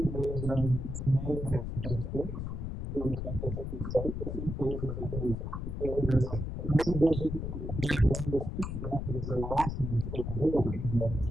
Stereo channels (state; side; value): noise; left; rumble, 4 dB below the sound